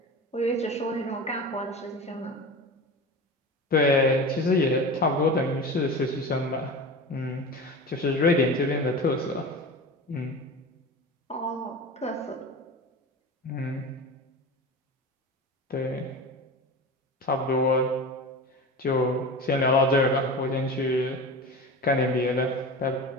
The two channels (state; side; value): normal; both; correlation 0.30